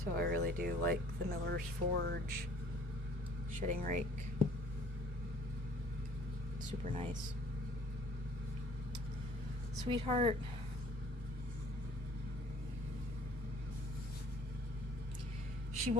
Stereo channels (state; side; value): normal; both; correlation 0.55